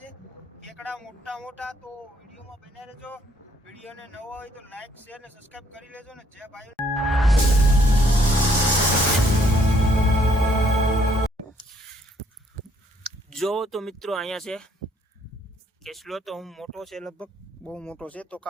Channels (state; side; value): normal; both; correlation 0.66